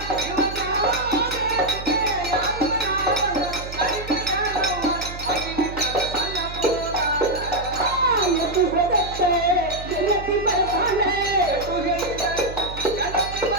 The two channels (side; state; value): right; noise; hum, 11 dB below the sound